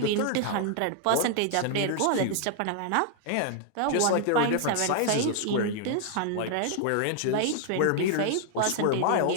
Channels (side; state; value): both; different; correlation 0.00